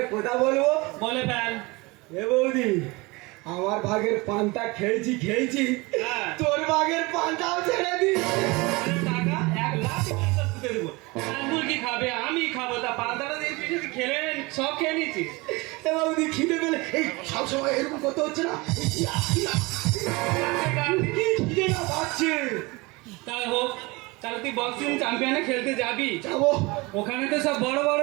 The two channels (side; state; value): left; quieter; 24.6 dB